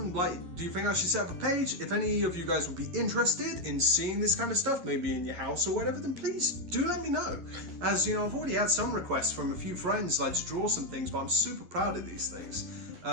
like, do you think I should set up a page? If any of you guys would be interested in seeing this kind of stuff, maybe in your house or whatever, then please do let me know. As you know, I've already had some requests from a few friends, like to draw some things, but I'm super proud of these things.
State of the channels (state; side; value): late; left; 11 ms